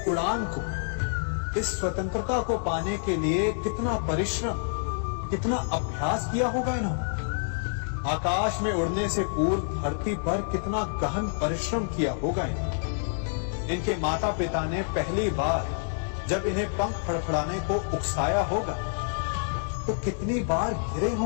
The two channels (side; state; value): right; silent; digital silence